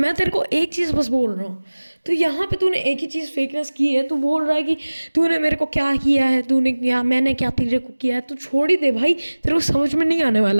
तेरे को एक चीज़ बस बोल रहा हूँ, तो यहाँ पे तूने एक ही चीज़ फेकनेस की है। तू बोल रहा है कि तूने मेरे को क्या किया है, तूने क्या, मैंने क्या तेरे को किया है। तू छोड़ ही दे भाई, तेरे को समझ में नहीं आने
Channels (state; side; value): inverted; both; correlation -1.00